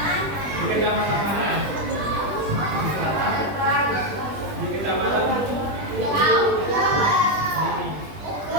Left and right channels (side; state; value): left; late; 20 ms